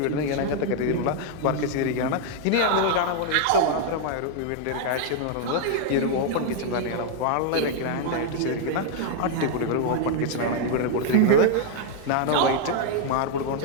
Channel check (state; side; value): different; both; correlation -0.01